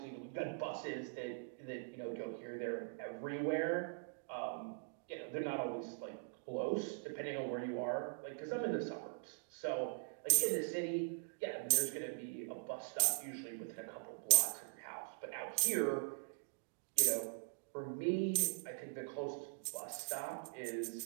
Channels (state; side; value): silent; left; digital silence